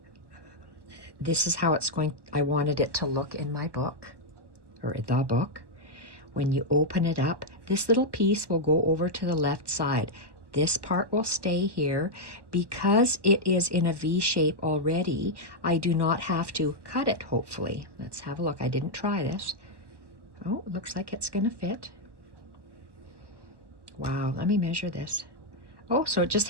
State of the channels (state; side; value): late; left; 1.2 ms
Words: this is how it's going, I wanted it to look in my book, or the book. When you open it up, this little piece will go over to the left side. This part will stay here. Because it is in a V shape already, I do not have to cut it, hopefully. Let's have a look. I didn't try this. Oh, it looks like it's gonna fit. Wow, let me measure this. Oh, so it just